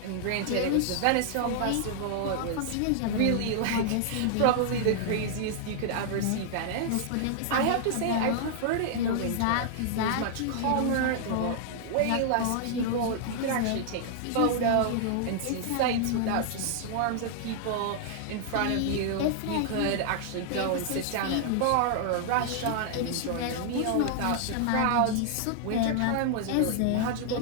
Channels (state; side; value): different; both; correlation -0.01